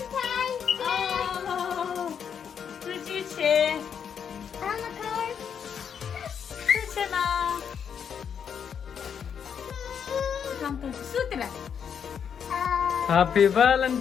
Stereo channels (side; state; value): right; quieter; 7.6 dB